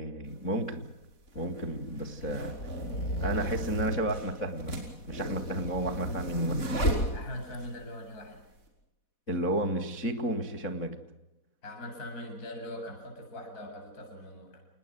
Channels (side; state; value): right; late; 4.1 ms